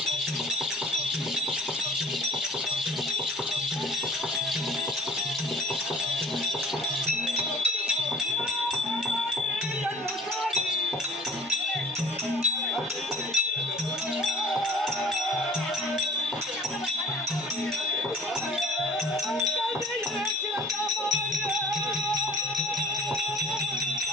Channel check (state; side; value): normal; both; correlation 0.50